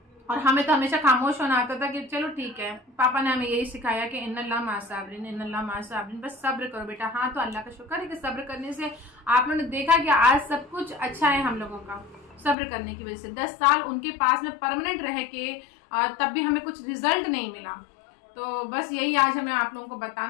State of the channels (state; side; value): drops out; right; at 12.6 s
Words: और हमें तो हमेशा खामोश होना आता था कि चलो ठीक है, पापा ने हमें यही सिखाया कि इन्नल्लाह माअ साबिरीन, इन्नल्लाह माअ साबिरीन, बस सब्र करो बेटा। हाँ, तो अल्लाह का शुक्र है कि सब्र करने से आप लोगों ने देखा कि आज सब कुछ अच्छा है हम लोगों का, सब्र करने की वजह से। 10 साल उनके पास में परमानेंट रह के तब भी हमें कुछ रिजल्ट नहीं मिला। तो बस यही आज हमें आप लोगों को